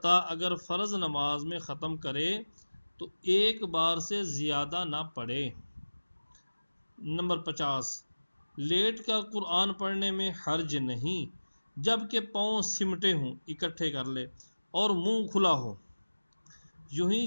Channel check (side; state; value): both; inverted; correlation -1.00